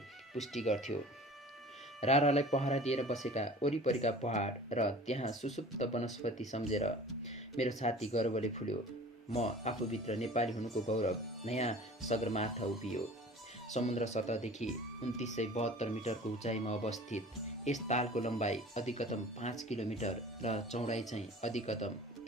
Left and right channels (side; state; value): both; normal; correlation 0.43